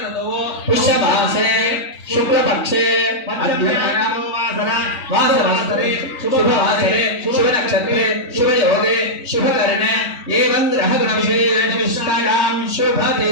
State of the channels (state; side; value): late; right; 3.2 ms